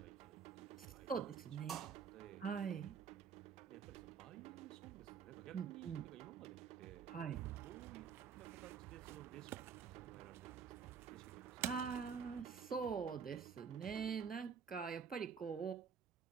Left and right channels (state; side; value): quieter; left; 6.7 dB